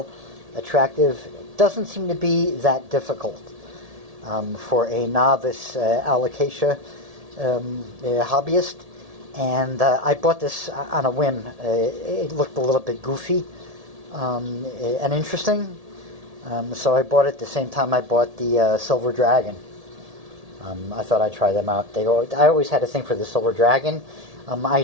attractive. It doesn't seem to be that difficult for a novice Alocasia hobbyist. And I bought this on a whim. It looked a little bit goofy and interesting. So I bought it the same time I bought the Silver Dragon. I thought I'd try them out. I always had a thing for the Silver Dragon. I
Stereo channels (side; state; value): left; late; 1.7 ms